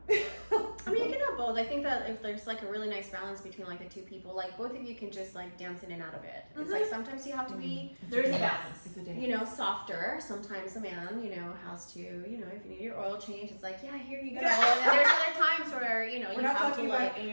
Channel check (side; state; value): both; inverted; correlation -1.00